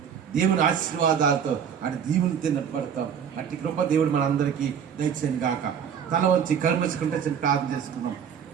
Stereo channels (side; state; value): left; quieter; 7.8 dB